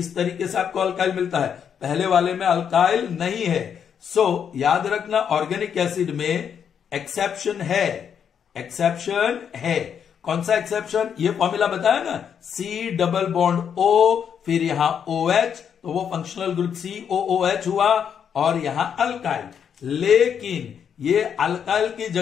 तरीके से आपको अल्काइल मिलता है। पहले वाले में अल्काइल नहीं है। सो याद रखना, ऑर्गेनिक एसिड में एक्सेप्शन है, एक्सेप्शन है। कौन सा एक्सेप्शन? ये फॉर्मूला बताया ना, C डबल बॉन्ड O, फिर यहां OH, तो वो फंक्शनल ग्रुप COOH हुआ और यहां अल्काइल। लेकिन ये अल्काइल की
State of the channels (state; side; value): quieter; right; 7.8 dB